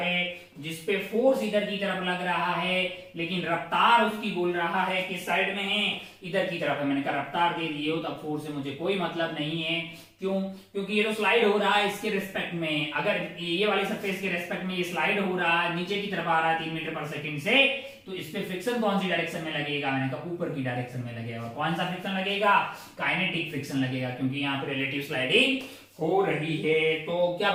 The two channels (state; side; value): identical; both; correlation 1.00